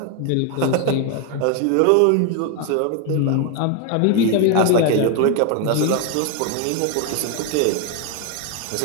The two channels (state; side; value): different; both; correlation 0.01